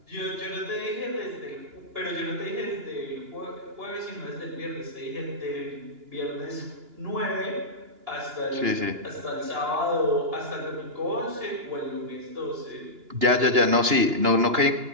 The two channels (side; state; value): left; late; 2.9 ms